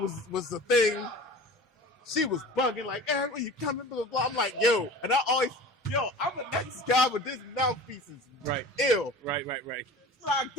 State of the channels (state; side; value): normal; both; correlation 0.38